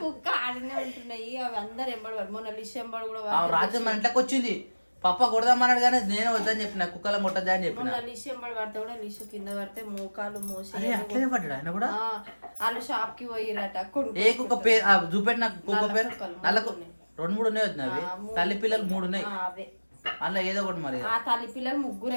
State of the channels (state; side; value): inverted; both; correlation -1.00